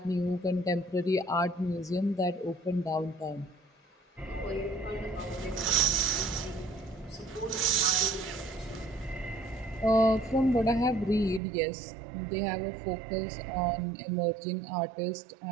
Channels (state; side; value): drops out; left; at 11.4 s